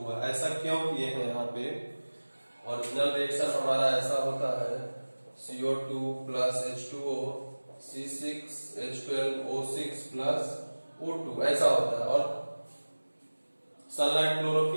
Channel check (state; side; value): inverted; both; correlation -1.00